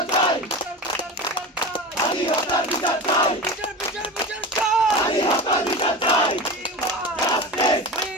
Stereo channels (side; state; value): both; normal; correlation 0.29